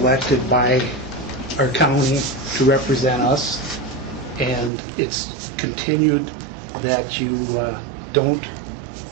by our county to represent us, and it's continued that you don't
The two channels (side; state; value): left; drops out; at 4.7 s